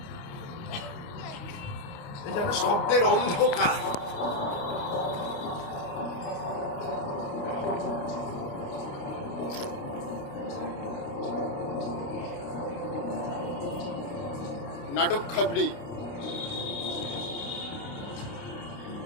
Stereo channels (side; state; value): right; late; 29 ms